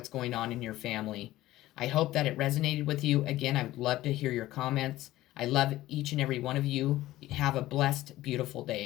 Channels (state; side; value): quieter; right; 16.0 dB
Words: going on in your family. I hope that it resonated with you. Again, I would love to hear your comments. I love each and every one of you. Have a blessed, beautiful